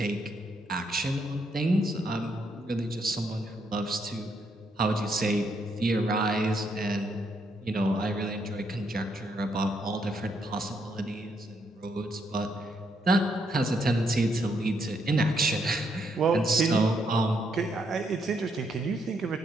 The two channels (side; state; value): both; normal; correlation 0.75